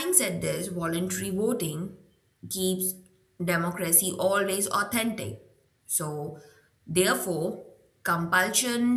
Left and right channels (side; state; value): both; identical; correlation 1.00